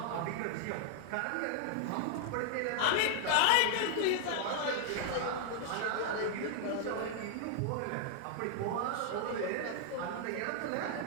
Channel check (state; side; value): different; both; correlation 0.00